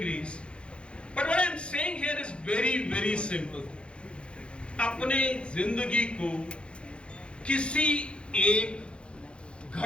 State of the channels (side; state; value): right; late; 0.057 ms